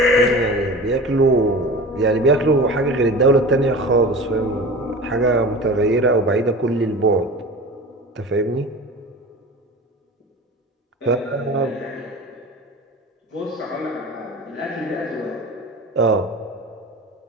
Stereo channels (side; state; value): both; normal; correlation 0.35